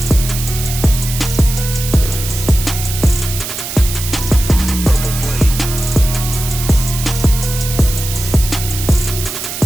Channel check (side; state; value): right; noise; hiss, 7 dB below the sound